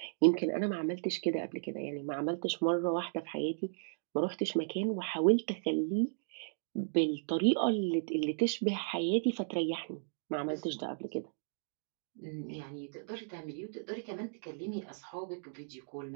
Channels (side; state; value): left; silent; digital silence